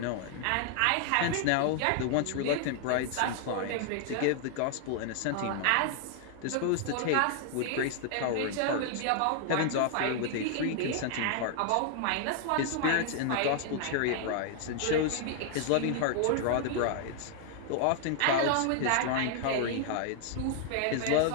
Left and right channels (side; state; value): both; different; correlation 0.00